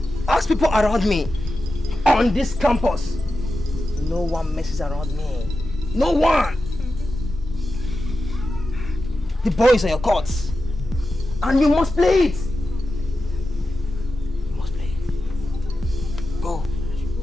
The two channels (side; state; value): both; normal; correlation 0.92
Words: Ask people around me on this campus. No one messes around me. No one. The ball is on your court. And you must play it. You must play it. Go.